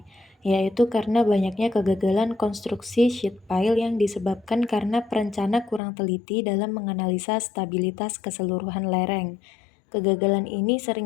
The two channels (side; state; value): right; drops out; at 5.8 s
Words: yaitu karena banyaknya kegagalan konstruksi sheet pile yang disebabkan karena perencana kurang teliti dalam menganalisa stabilitas keseluruhan lereng. Kegagalan ini